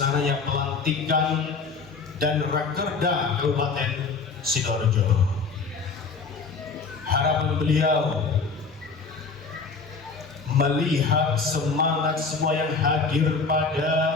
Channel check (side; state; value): right; quieter; 4.6 dB